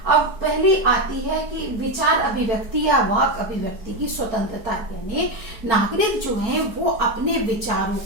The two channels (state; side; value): late; left; 4.5 ms